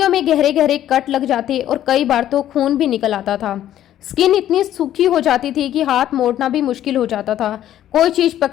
में गहरे गहरे कट लग जाते और कई बार तो खून भी निकल आता था। स्किन इतनी सूखी हो जाती थी कि हाथ मोड़ना भी मुश्किल हो जाता था। कोई चीज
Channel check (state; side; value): quieter; right; 12.0 dB